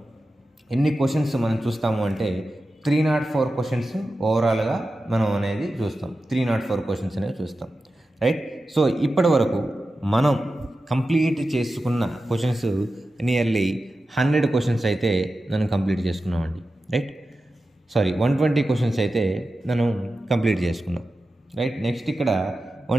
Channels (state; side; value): normal; both; correlation 0.93